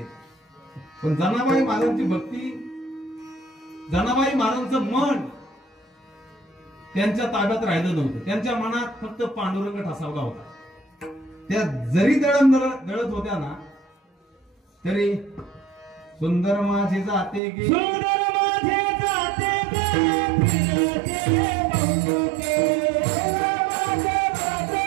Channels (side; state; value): left; drops out; at 17.4 s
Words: पण जनाबाई महाराजांची भक्ती, जनाबाई महाराजांचं मन त्यांच्या ताब्यात राहिलं नव्हतं. त्यांच्या मनात फक्त पांडुरंग ठसावला होता. त्या जरी दळत होत्या ना तरी सुंदर माझे जाते गे, सुंदर माझे जाते गे, फिरते बहुमुखे, सुंदर माझे जाते